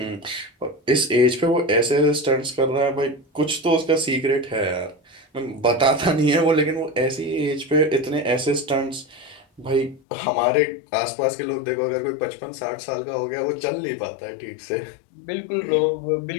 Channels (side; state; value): right; drops out; at 10.0 s